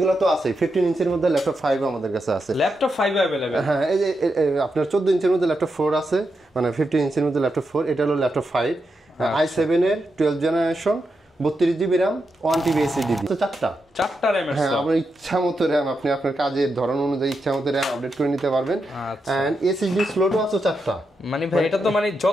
তো আছে। 15 ইঞ্চির মধ্যে ল্যাপটপ 5 আমাদের কাছে আছে। Laptop 5 available. হ্যাঁ, এই যে আপনার 14 ইঞ্চির মধ্যে ল্যাপটপ 4 আছে, মানে 15 ইঞ্চির মধ্যে ল্যাপটপ 4। এটা হলো ল্যাপটপ 5 i7 এর 12th generation, 32GB RAM, 1TB SSD। তো চারটা RAM। হ্যাঁ, আপনার ইচ্ছা মতো RAM, আপনি আপনার কাজের ধরন অনুযায়ী ইচ্ছা মতো RAM আপডেট করে নিতে পারবেন। এন্ড SSD স্লটও আছে 4টা। মানে ভাই, এটা তো মানে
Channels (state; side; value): normal; both; correlation 0.85